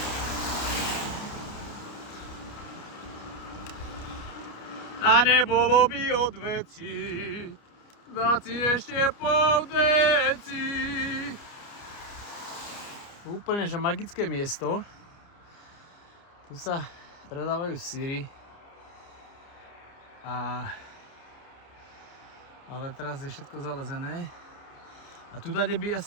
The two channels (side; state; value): right; late; 29 ms